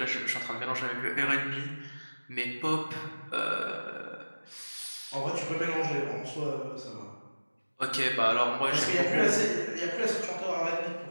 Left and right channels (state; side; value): inverted; both; correlation -1.00